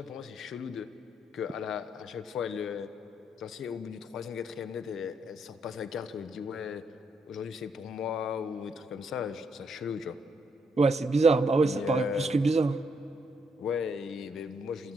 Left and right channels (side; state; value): both; normal; correlation 0.75